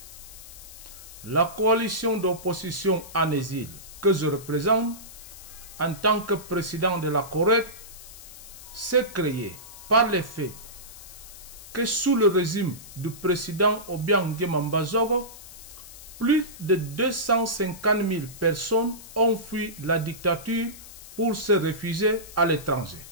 La coalition d'opposition en exil que je représente en tant que président de la Corée s'est créée par le fait que sous le régime du président Obiang Nguema Mbazogo, plus de 250 000 personnes ont fui la dictature pour se réfugier à l'étranger.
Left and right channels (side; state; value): left; noise; hiss, 16 dB below the sound